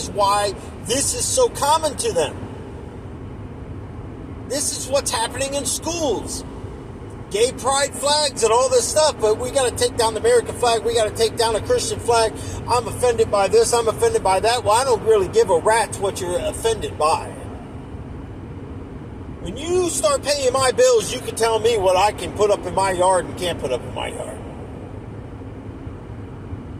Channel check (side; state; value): both; identical; correlation 1.00